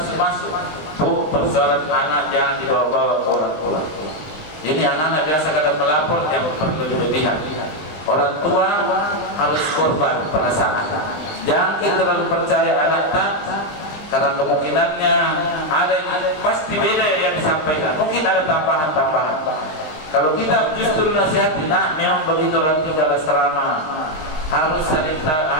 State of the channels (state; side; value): late; right; 19 ms